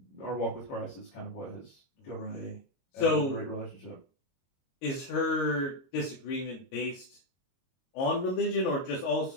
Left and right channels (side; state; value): right; late; 22 ms